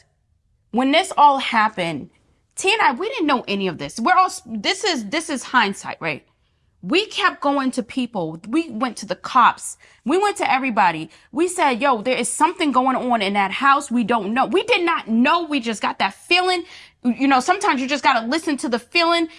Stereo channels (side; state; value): both; identical; correlation 1.00